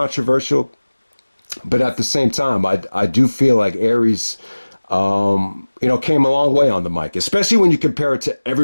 But at the same time, I do feel like Aries, came a long way on the mic, especially when you compare it to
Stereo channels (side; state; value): both; inverted; correlation -1.00